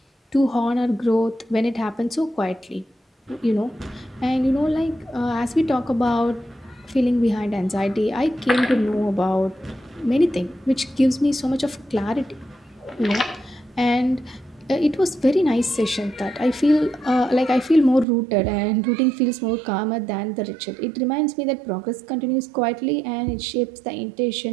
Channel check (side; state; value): left; drops out; at 18.1 s